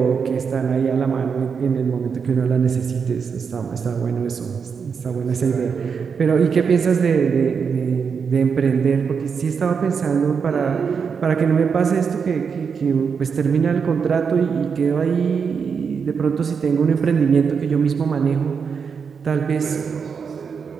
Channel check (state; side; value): quieter; left; 6.1 dB